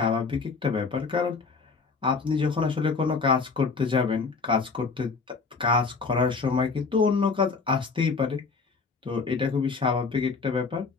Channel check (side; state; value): right; quieter; 4.6 dB